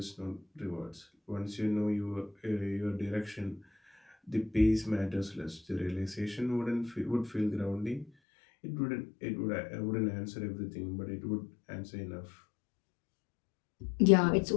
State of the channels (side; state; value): right; drops out; at 8.1 s